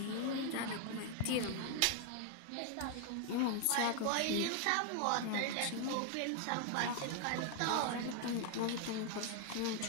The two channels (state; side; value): different; both; correlation 0.00